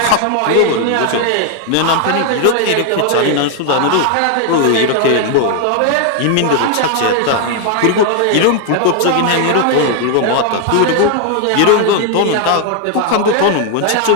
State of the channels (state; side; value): different; both; correlation 0.00